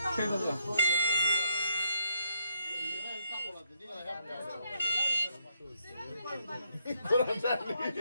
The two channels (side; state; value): both; inverted; correlation -0.76